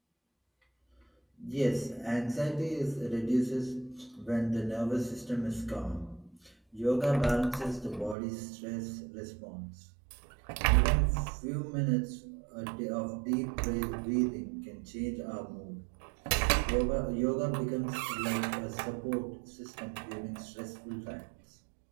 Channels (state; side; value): drops out; left; at 8.2 s